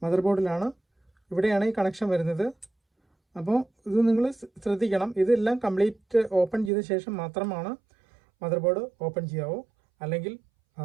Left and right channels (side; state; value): left; drops out; at 6.7 s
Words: മദർ ബോർഡിലാണ്. ഇവിടെയാണ് ഈ കണക്ഷൻ വരുന്നത്. അപ്പോൾ ഇത് നിങ്ങൾ ശ്രദ്ധിക്കണം. ഇതെല്ലാം കംപ്ലീറ്റ് ഓപ്പൺ ചെയ്ത ശേഷം മാത്രമാണ് മദർ ബോർഡ് ഓപ്പൺ ചെയ്യാവൂ. അല്ലെങ്കിൽ